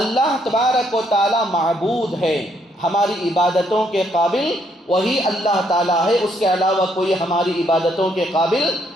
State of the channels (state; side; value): normal; both; correlation 0.71